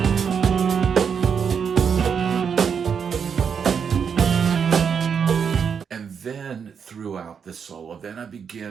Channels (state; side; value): quieter; left; 6.8 dB